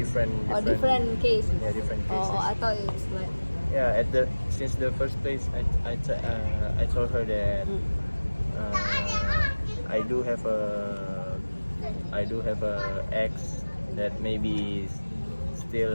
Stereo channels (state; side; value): inverted; both; correlation -1.00